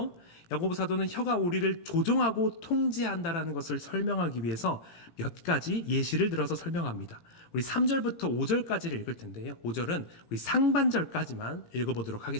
야고보 사도는 혀가 우리를 조종하고 통제한다라는 것을 설명하기 위해서 몇 가지 예시를 들어서 설명합니다. 우리 3절부터 5절까지를 읽을 텐데요. 5절은 우리 상반절까지만 읽어보도록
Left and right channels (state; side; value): late; right; 17 ms